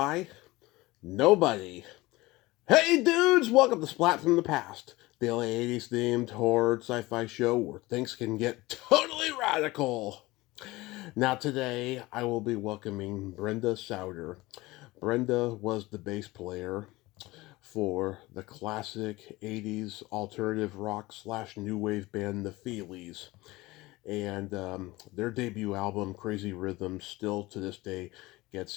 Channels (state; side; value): quieter; right; 20.3 dB